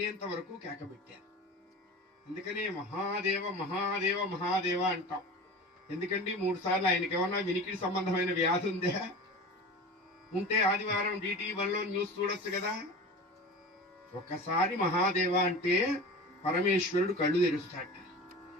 వరకు కేకబెట్టారు. అందుకనే మహాదేవ మహాదేవ మహాదేవ అంటాం. ఎందుకండి 3 సార్లు ఆయనకి ఏమన్నా వినికిడి సంబంధమైన వ్యాధి ఉందా? ఉంటే ఆదివారం DT1లో న్యూస్ చూడొచ్చు కదా. ఒక్కసారి మహాదేవ అంటే పరమేశ్వరుడు కళ్ళు తెరుస్తాడు.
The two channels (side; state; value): both; normal; correlation 0.34